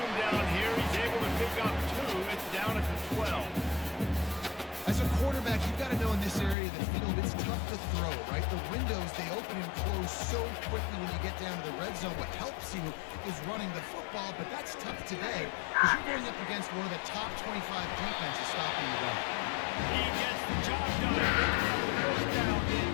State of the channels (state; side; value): drops out; right; at 6.6 s